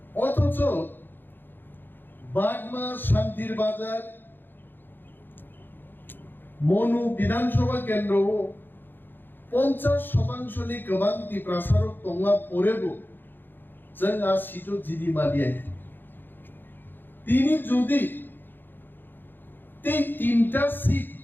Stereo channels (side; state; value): right; late; 0.095 ms